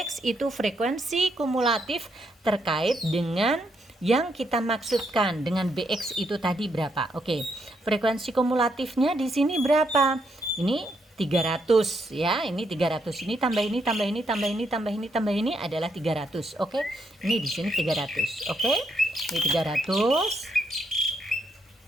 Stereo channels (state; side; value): normal; both; correlation 0.77